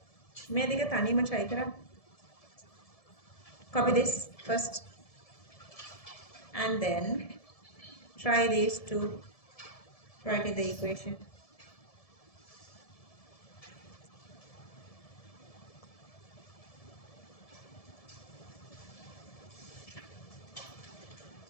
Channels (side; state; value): right; late; 1.7 ms